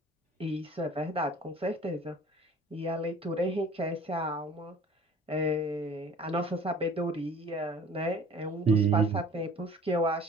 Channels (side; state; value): both; normal; correlation 0.48